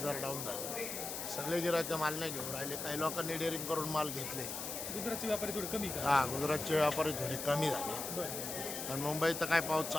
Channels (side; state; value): left; noise; hiss, 5 dB below the sound